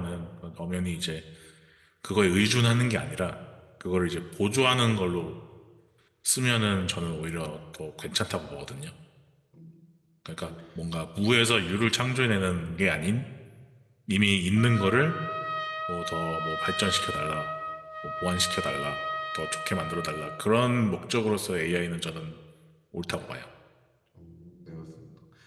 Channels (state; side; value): identical; both; correlation 1.00